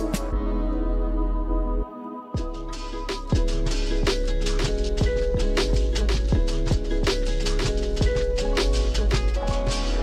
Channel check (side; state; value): both; identical; correlation 1.00